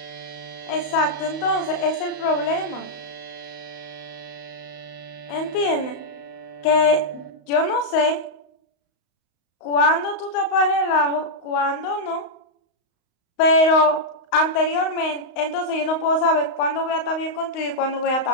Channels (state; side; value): late; right; 35 ms